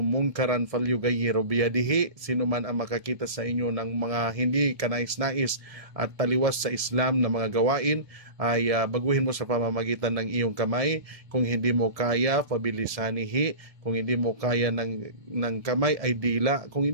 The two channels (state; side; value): late; left; 1.7 ms